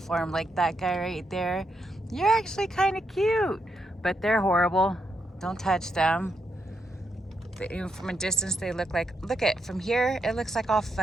like that guy right there. You're actually kind of cute, but they're horrible. Don't touch them. From a distance they look like, from here it looks like all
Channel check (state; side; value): normal; both; correlation 0.80